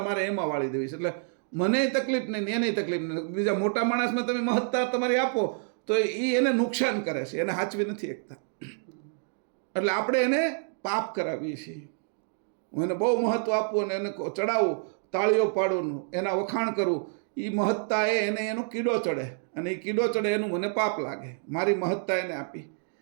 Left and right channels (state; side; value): silent; left; 59 dB below the other